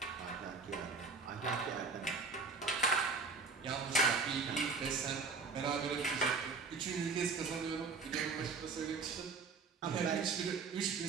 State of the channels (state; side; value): quieter; left; 4.6 dB